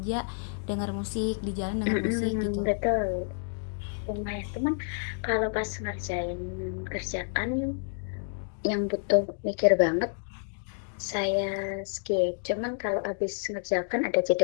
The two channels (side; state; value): right; silent; digital silence